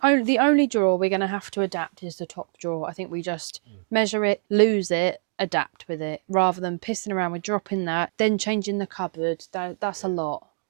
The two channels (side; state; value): left; silent; digital silence